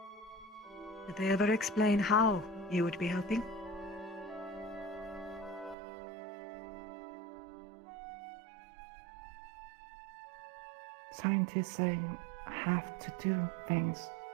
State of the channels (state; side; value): drops out; left; at 5.8 s